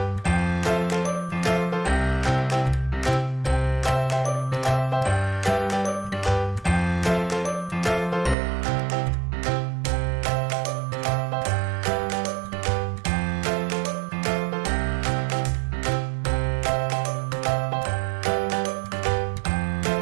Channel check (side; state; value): left; drops out; at 8.3 s